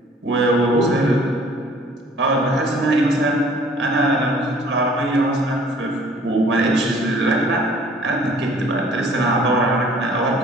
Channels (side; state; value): both; normal; correlation 0.54